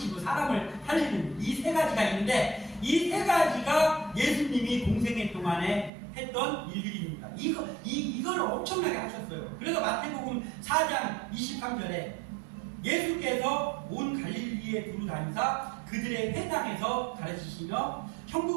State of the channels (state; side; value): drops out; left; at 5.9 s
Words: 사람을 살리는 이 세 가지가 있는데 이 세 가지가 예수님이 공생애 동안에 했던 일들입니다. 이걸 엄청나게 하셨어요. 그래서 마태복음 4장 23절에 예수께서 온 갈릴리에 두루 다니사 그들의 회당에서 가르치시며